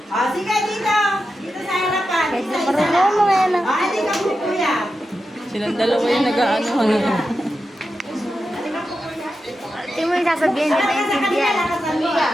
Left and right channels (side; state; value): both; normal; correlation 0.89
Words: Sige dito. Dito sa harapan. Isa-isa lang. Hindi ka po kuya. Silang dalawa yung nag-aanohan nila. Hindi mo yung sasabihin, hindi maintindihan.